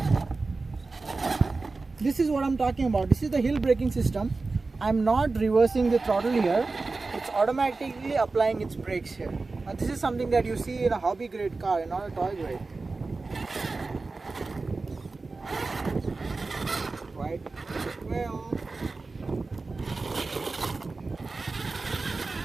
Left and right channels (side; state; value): left; quieter; 3.8 dB